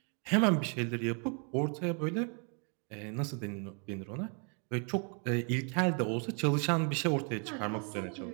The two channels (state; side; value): quieter; left; 39.2 dB